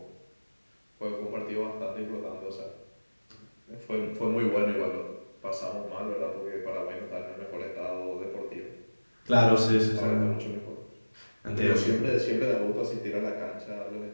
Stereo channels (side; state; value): both; inverted; correlation -1.00